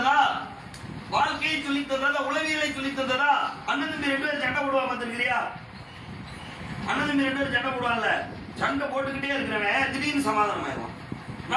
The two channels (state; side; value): identical; both; correlation 1.00